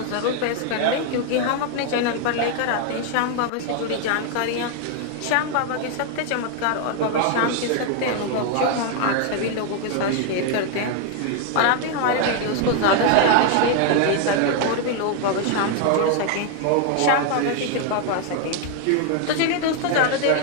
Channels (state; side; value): different; both; correlation 0.00